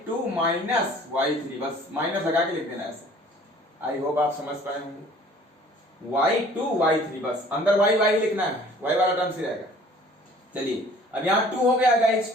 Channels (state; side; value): normal; both; correlation 0.52